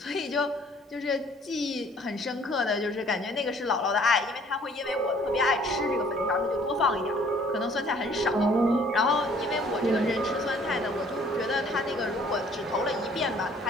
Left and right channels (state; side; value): normal; both; correlation 0.58